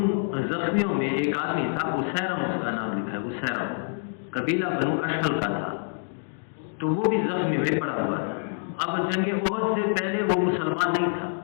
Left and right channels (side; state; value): right; silent; 61 dB below the other